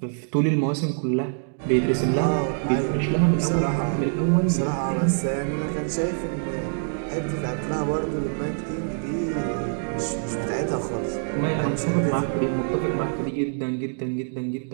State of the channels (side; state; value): left; silent; digital silence